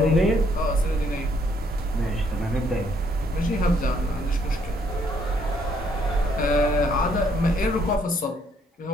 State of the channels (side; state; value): both; normal; correlation 0.69